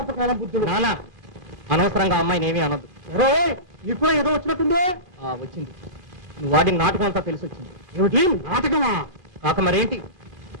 బుద్ధులు. నానా, అనవసరంగా అమ్మాయిని ఏమీ అనొద్దు. నీకు కూడా ఏదో వచ్చినట్టుందే. వచ్చింది. నువ్వు వాడిన నాటకం అంతా తెలిసి వచ్చింది. ఏమిటి నాటకమా? కాక మరేంటి?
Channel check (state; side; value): late; left; 2.5 ms